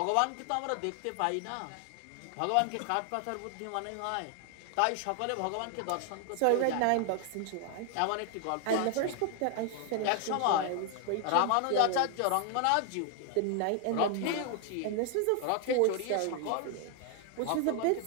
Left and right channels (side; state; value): both; different; correlation 0.00